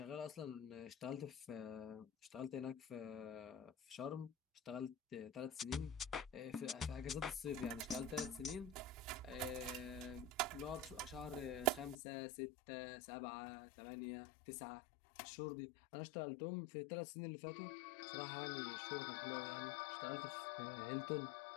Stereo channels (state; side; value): drops out; right; at 12.0 s